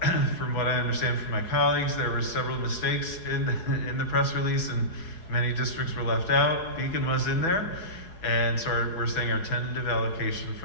what I understand from my colleagues, there were several mistakes in the press release, and many districts were left out. Beacon was in there, and so we're saying our tentative allocation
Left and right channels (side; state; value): right; late; 4.7 ms